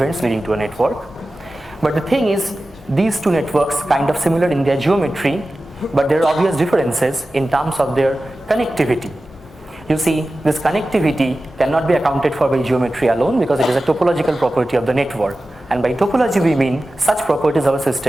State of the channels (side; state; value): both; normal; correlation 0.95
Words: leading to a network. But the thing is, these two networks kind of similar in their geometry, but there are obvious differences in terms of their connectivity. You see, this connectivity cannot be accounted for by geometry alone because it is a topological property of the network. And by topology we mean such properties of a